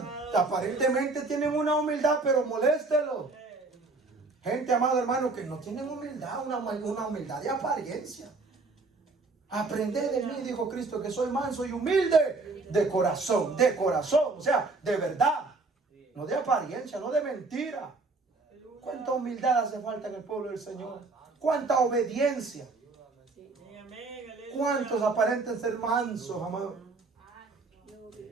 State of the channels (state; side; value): quieter; left; 3.6 dB